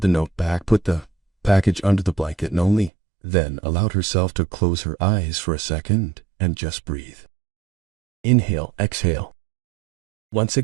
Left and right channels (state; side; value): drops out; left; at 2.9 s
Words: the note back, put the package under the blanket, and only then allowed herself to close her eyes for a second and just breathe. Inhale, exhale. Once